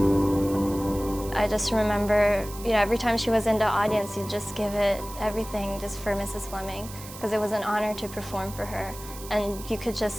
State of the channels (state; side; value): noise; right; hiss, 15 dB below the sound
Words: I just remember, every time she was in the audience, you'd just give it everything just for Mrs. Fleming, because it was an honor to perform for her, and you could